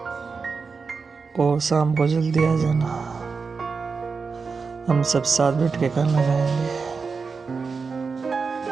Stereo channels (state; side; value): quieter; left; 4.9 dB